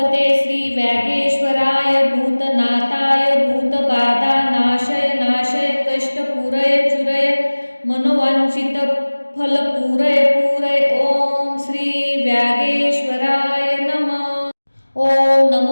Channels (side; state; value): both; inverted; correlation -1.00